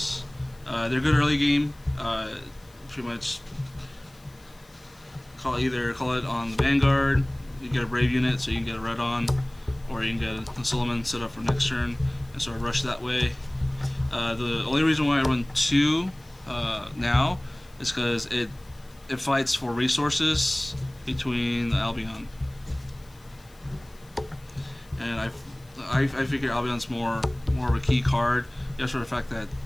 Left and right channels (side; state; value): left; noise; hiss, 28 dB below the sound